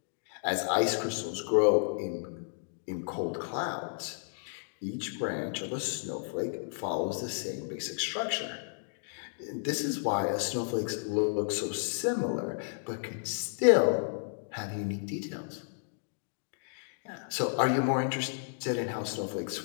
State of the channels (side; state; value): right; silent; digital silence